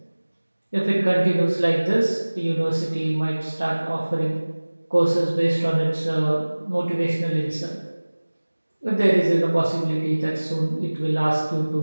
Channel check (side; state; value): both; inverted; correlation -1.00